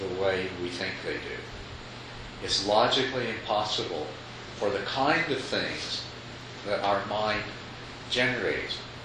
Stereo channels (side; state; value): both; identical; correlation 1.00